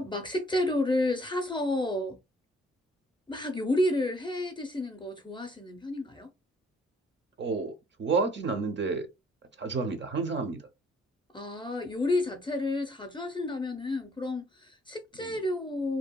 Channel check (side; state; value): both; normal; correlation 0.62